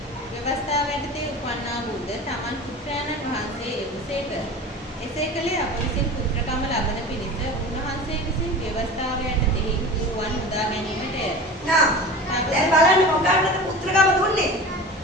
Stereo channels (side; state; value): both; normal; correlation 0.34